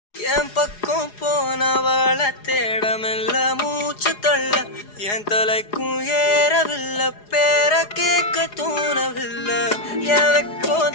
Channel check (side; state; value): right; late; 4.8 ms